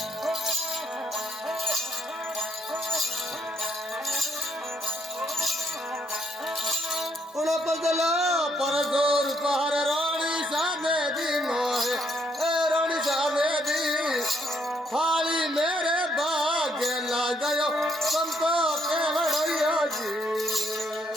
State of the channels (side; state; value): both; normal; correlation 0.71